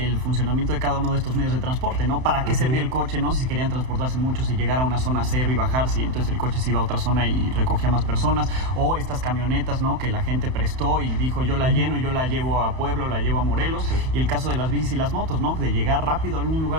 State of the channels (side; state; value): left; late; 31 ms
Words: funcionamiento de cada uno de estos medios de transporte, ¿no? ¿Para qué servía el coche, no? Si querían transportarse mucho, si llegar a una zona cero y bajarse, y entonces el coche se iba a otra zona y recogía más personas, o estas camionetas, ¿no? Que la gente prestó y dijo, yo la lleno y yo la llevo a Puebla, la llevo a Morelos, y el caso de las bicis y las motos, ¿no? De llegar rápido a algún